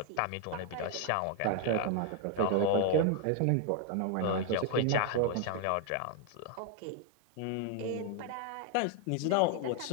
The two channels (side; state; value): both; different; correlation 0.01